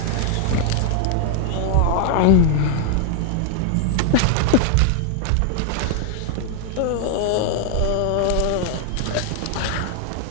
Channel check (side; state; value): both; different; correlation 0.00